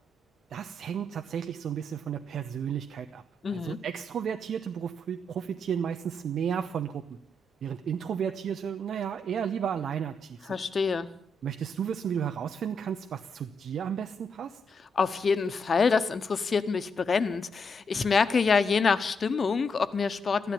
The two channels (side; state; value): both; normal; correlation 0.79